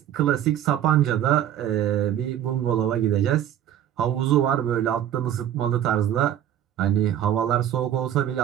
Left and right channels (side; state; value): left; quieter; 11.0 dB